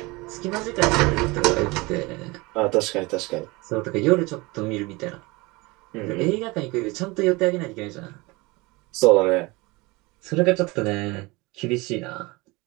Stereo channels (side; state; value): left; quieter; 24.0 dB